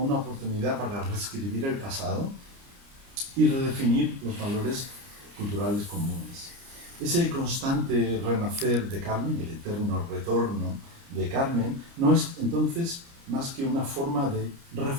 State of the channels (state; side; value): late; left; 29 ms